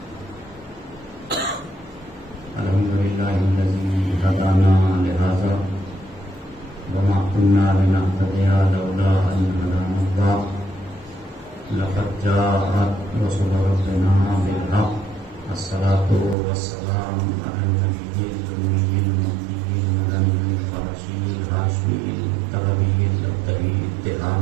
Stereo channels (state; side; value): drops out; left; at 16.4 s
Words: अल्हम्दुलिल्लाहिल्लज़ी हदाना लिहाज़ा वमा कुन्ना लिनहतदिया लौला अन हदानल्लाह लक़द जाअत रसूलु रब्बिना बिल-हक़्क़ अस्सलातु वस्सलामु अला नबिय्यिल उम्मिय्यिल मुत्तक़ील मदनिय्यिल क़ुरैशिय्यिल हाशिमिय्यिल मुत्तबइय्यिल अब्दई